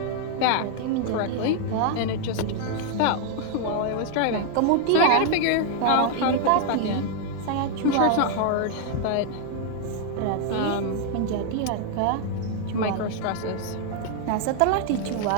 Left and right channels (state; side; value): different; both; correlation 0.00